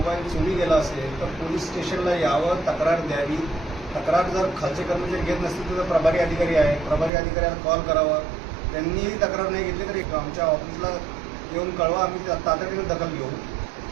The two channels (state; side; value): drops out; left; at 7.1 s